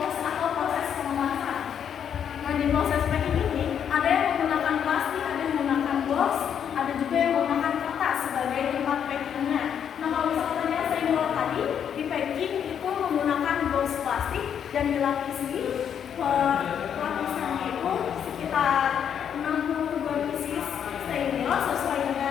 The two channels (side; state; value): right; quieter; 8.4 dB